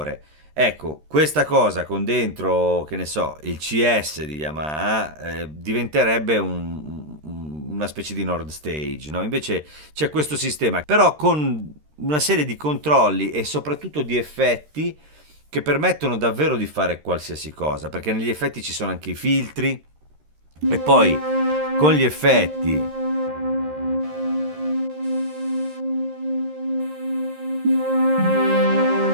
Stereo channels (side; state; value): left; late; 13 ms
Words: Ecco, questa cosa con dentro, che ne so, il CS di Yamaha diventerebbe una specie di Nord Stage, no? Invece c'è questo sistema, però con una serie di controlli e soprattutto di effetti che permettono davvero di fare qualsiasi cosa, perché negli effetti ci sono anche i filtri e poi con gli effetti